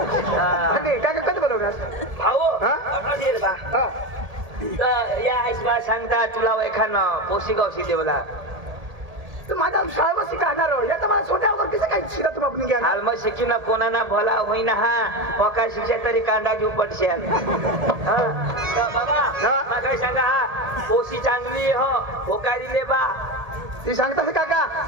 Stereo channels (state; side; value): late; left; 1.8 ms